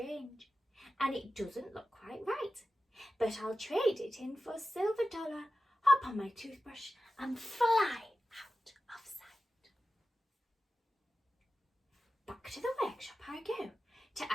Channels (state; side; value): normal; both; correlation 0.93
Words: and it doesn't look quite right, but I'll trade it in for a silver dollar, hop on my toothbrush and fly out of sight. Back to the workshop I go to